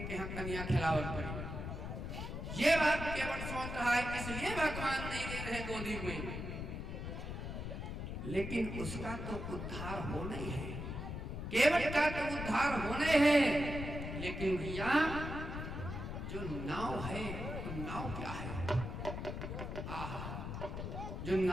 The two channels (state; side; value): noise; left; rumble, 5 dB below the sound